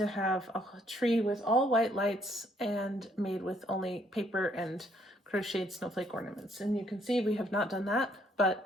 have a tree with all white lights and made with only paper and crocheted snowflake ornaments. And you can see we have not done that,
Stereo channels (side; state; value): both; normal; correlation 0.68